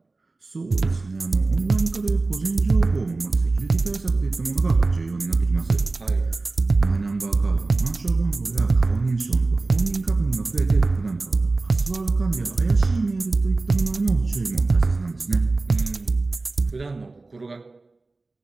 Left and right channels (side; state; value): left; quieter; 3.4 dB